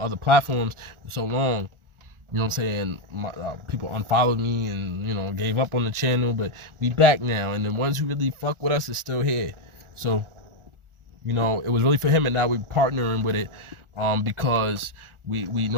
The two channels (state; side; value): late; left; 1.4 ms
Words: platforms for so long. You know what I'm saying? People unfollowed me and, gave up on the channel, but we back now. And the ones who really fuck with us is still here. So, it was really for him, and now we're partnering with it because we